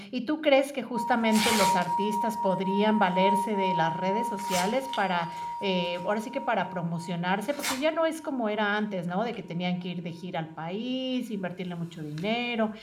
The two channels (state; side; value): identical; both; correlation 1.00